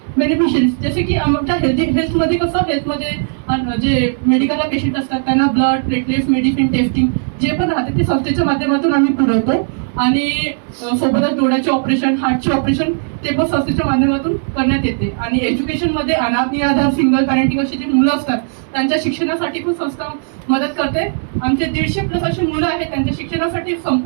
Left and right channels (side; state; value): left; silent; 64 dB below the other